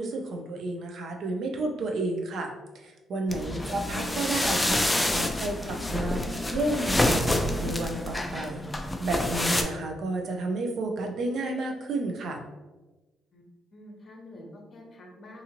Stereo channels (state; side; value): normal; both; correlation 0.80